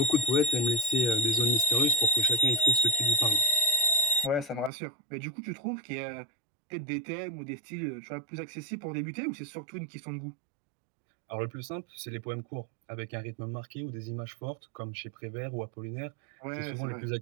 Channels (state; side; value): drops out; left; at 4.7 s